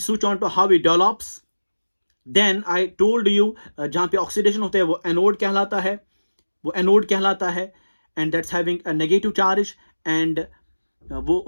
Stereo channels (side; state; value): both; inverted; correlation -1.00